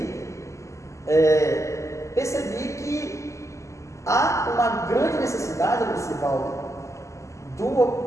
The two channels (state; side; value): late; right; 0.15 ms